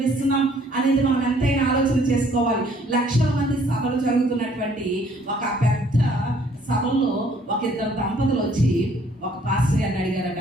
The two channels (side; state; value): both; normal; correlation 0.61